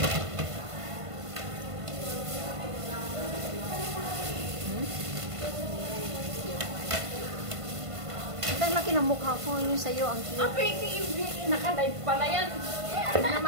Ang laki ng mukha ko, yung sa'yo, ang cute. Pwede yung naka-live pala yan.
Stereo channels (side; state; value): left; late; 1.5 ms